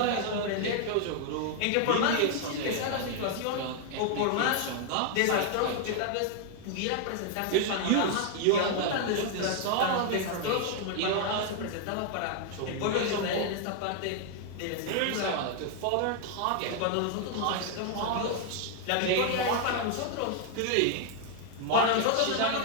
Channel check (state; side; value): different; both; correlation 0.00